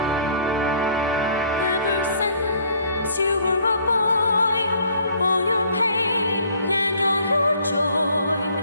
Ever since you were a boy, all your pain and all your joy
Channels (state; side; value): inverted; both; correlation -0.58